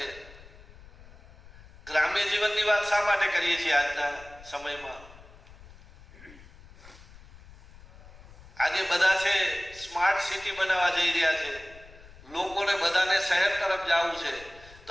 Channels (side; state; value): left; noise; rumble, 21 dB below the sound